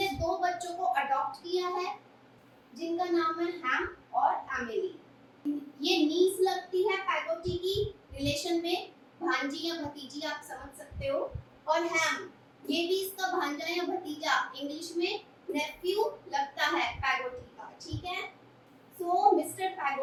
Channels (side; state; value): both; identical; correlation 1.00